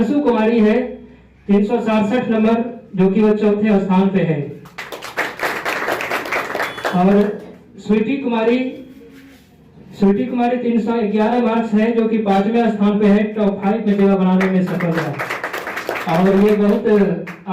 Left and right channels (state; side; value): identical; both; correlation 1.00